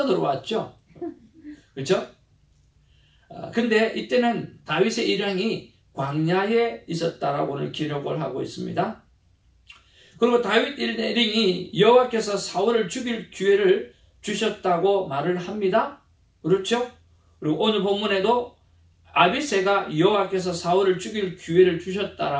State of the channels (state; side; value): identical; both; correlation 1.00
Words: 들어왔죠. 그렇죠? 근데 이때는 다윗의 일행이 광야에 있었다라고 오늘 기록을 하고 있습니다. 그리고 다윗 일행이 여호와께서 사울을 죽일 기회를 주셨다고 말을 합니다. 그렇죠? 그리고 오늘 본문에도 아비새가 여호와께서 사울을 죽일 기회를